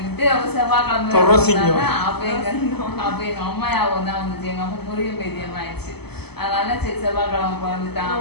அவர் செவ்வாய்க்கிழமை அப்ப எங்க அம்மா யாவும் தான் வந்துச்சு. எங்க அம்மா முருகன் பேத்தியம் ஆயிடுச்சு. அதனால சரி செவ்வாய்க்கிழமை பிறந்துட்டான்.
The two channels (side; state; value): right; late; 0.97 ms